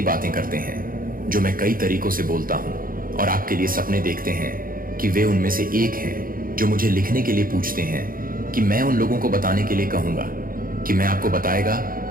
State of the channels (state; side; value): late; left; 0.41 ms